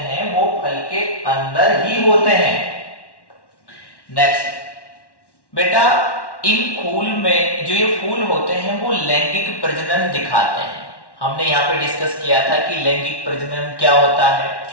वो फल के अंदर ही होते हैं। नेक्स्ट बेटा, इन फूल में जो ये फूल होते हैं वो लैंगिक प्रजनन दिखाते हैं। हमने यहाँ पे डिस्कस किया था कि लैंगिक प्रजनन क्या होता है।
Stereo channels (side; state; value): right; late; 1.1 ms